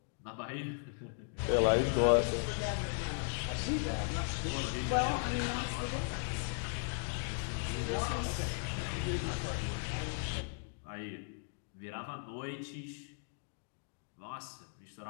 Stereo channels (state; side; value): silent; right; 53 dB below the other